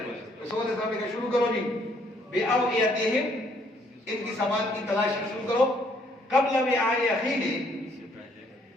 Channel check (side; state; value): both; normal; correlation 0.66